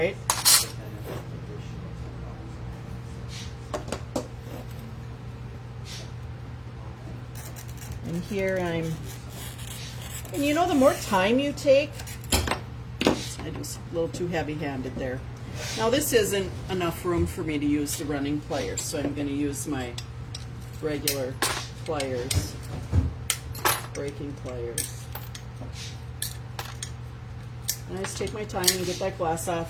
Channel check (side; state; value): both; identical; correlation 1.00